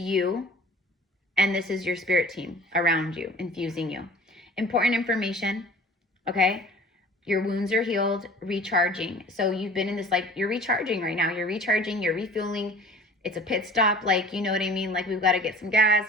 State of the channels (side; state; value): both; normal; correlation 0.45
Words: and this is your spirit team around you, infusing you. Important information, okay? Your wounds are healed, recharging. So you've been in this, like, you're recharging right now. You're recharging, you're refueling. It's a pit stop, like, you know what I mean? Like, we've got to get some